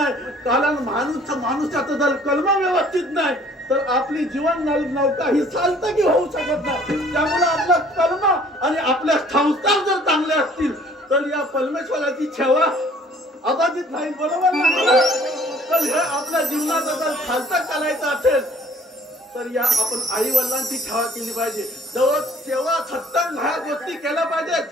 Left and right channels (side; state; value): both; normal; correlation 0.55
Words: कारण माणूसाचं जर कर्म व्यवस्थित नाही तर आपली जीवन नौका ही चालतं की होऊ शकत नाही. त्यामुळे आपलं कर्म आणि आपल्या संस्कार जर चांगले असतील तर या परमेश्वराची सेवा अबाधित नाही. बरोबर ना? तर हे आपल्या जीवनात जर खालतं करायचं असेल तर या आपण आई वडिलांची सेवा केली पाहिजे. जवळ सेवा सत्संग ह्या गोष्टी केल्या पाहिजेत.